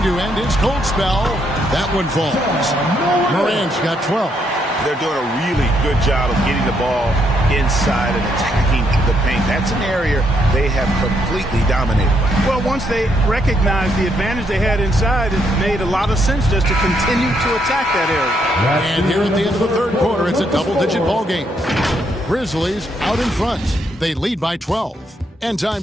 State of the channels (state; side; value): normal; both; correlation 0.75